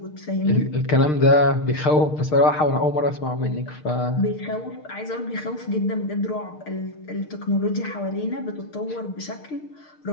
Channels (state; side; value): late; right; 6.6 ms